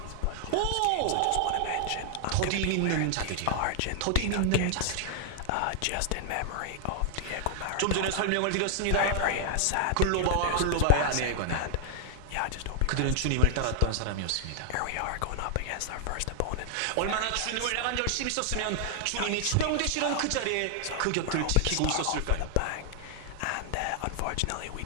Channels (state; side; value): different; both; correlation 0.00